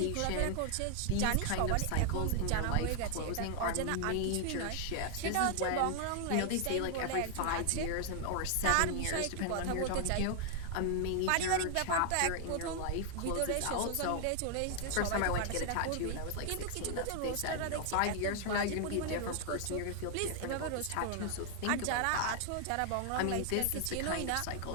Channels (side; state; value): both; different; correlation 0.00